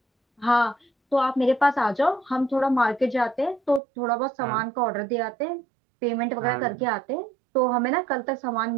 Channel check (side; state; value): left; drops out; at 3.8 s